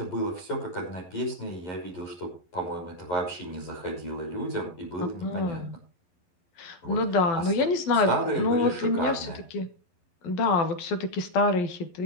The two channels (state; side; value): late; right; 11 ms